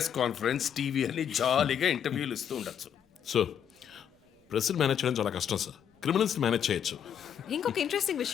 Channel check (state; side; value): quieter; right; 8.8 dB